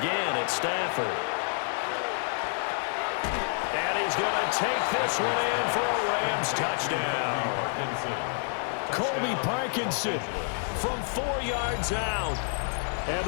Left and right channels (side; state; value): right; silent; 58 dB below the other